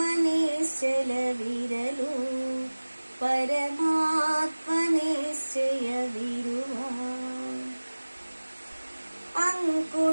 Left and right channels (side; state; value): both; inverted; correlation -1.00